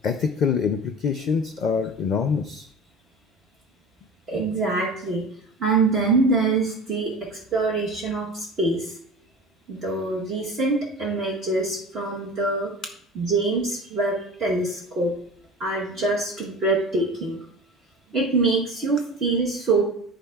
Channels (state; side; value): normal; both; correlation 0.34